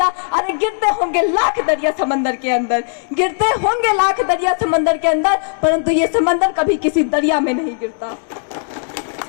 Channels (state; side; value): silent; right; digital silence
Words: अरे गिरते होंगे लाख दरिया समंदर के अंदर, गिरते होंगे लाख दरिया समंदर के अंदर, परंतु ये समंदर कभी किसी दरिया में नहीं गिरता।